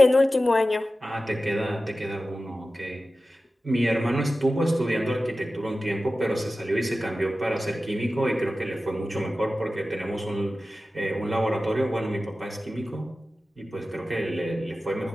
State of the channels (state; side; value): normal; both; correlation 0.95